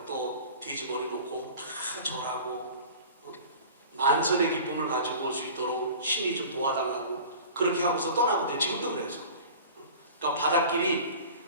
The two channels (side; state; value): both; inverted; correlation -0.41